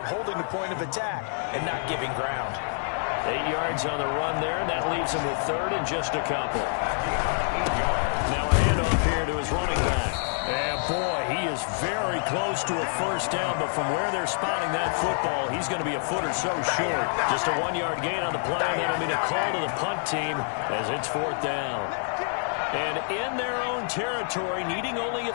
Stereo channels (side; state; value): right; silent; 60 dB below the other